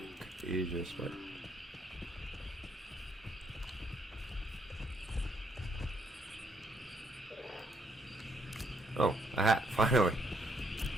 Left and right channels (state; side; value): normal; both; correlation 0.72